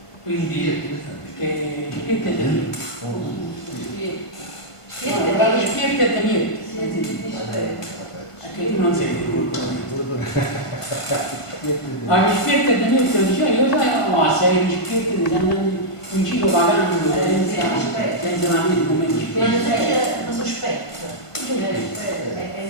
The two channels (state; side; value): late; right; 1.5 ms